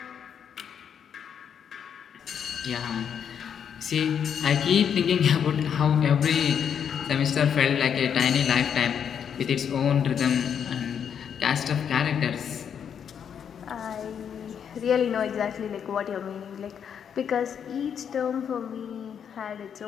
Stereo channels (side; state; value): right; quieter; 7.9 dB